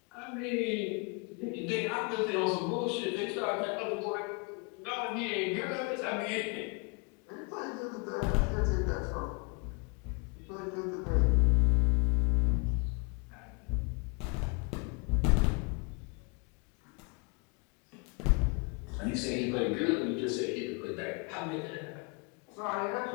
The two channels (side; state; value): right; quieter; 32.1 dB